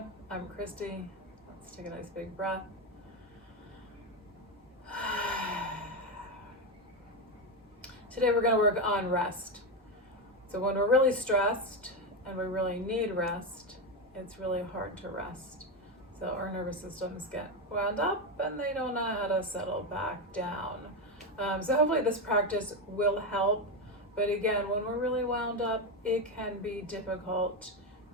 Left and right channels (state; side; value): normal; both; correlation 0.11